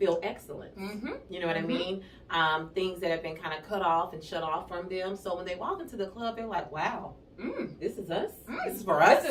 excellent. You know what I mean? Things that have been kind of cut off and shut off from them. So when they walk into the club, they're like, wow, this is us. This is for us.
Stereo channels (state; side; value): identical; both; correlation 1.00